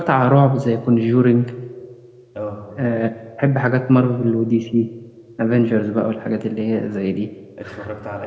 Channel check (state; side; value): identical; both; correlation 1.00